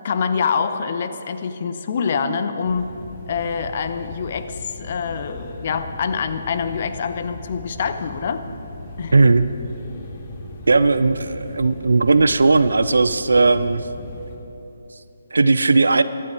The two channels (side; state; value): both; inverted; correlation -0.87